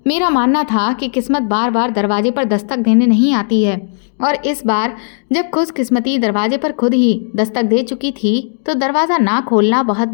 मेरा मानना था कि किस्मत बार बार दरवाजे पर दस्तक देने नहीं आती है, और इस बार जब खुशकिस्मती दरवाजे पर खुद ही दस्तक दे चुकी थी तो दरवाज़ा ना खोलना बहुत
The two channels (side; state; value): right; silent; 70 dB below the other